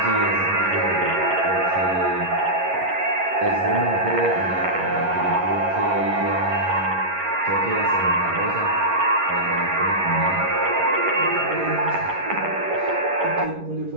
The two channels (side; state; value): left; late; 11 ms